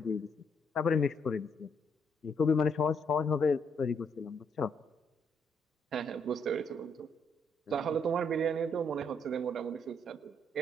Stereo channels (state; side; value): normal; both; correlation 0.73